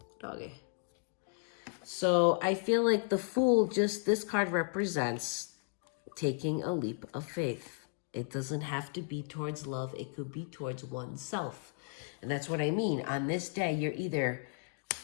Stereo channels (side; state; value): right; silent; 55 dB below the other